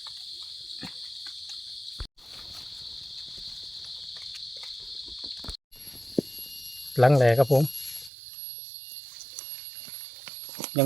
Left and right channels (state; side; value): drops out; left; at 8.1 s